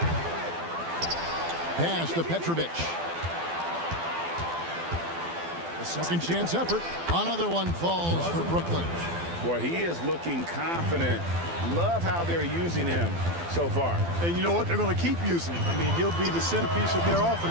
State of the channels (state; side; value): late; left; 12 ms